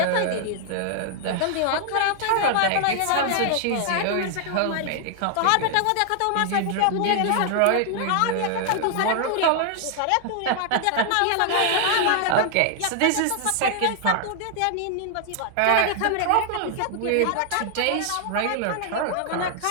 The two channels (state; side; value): different; both; correlation 0.00